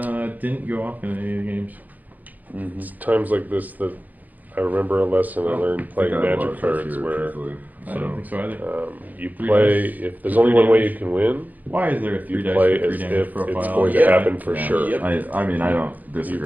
didn't go off in any of the games. It's times like this that I remember a lesson I learned playing I think I have a lot Magic of trust cards here, where truthfully. I don't think so either. you 3 play, dice, if there's 3 only one way damage. you can win, Why is there a 3 you dice play for 3 as damage if profile? it's going to Yeah. happen for Yeah. sure. I mean, I don't You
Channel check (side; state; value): left; late; 0.082 ms